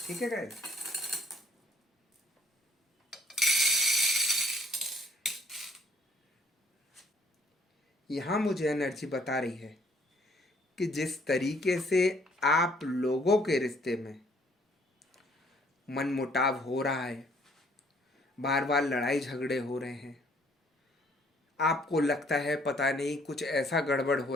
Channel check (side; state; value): both; normal; correlation 0.62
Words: ठीक है गाइस। यहाँ मुझे एनर्जी बता रही है कि जिस तरीके से आप लोगों के रिश्ते में मनमुटाव हो रहा है, बार बार लड़ाई झगड़े हो रहे हैं, आपको लगता है पता नहीं कुछ ऐसा गड़बड़